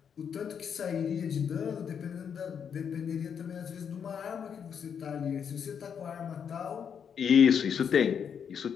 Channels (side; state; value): right; quieter; 7.5 dB